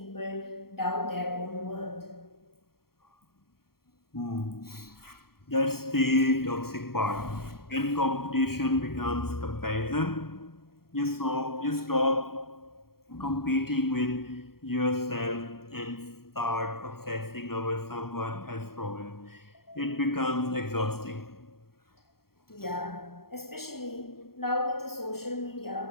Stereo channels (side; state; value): right; late; 0.94 ms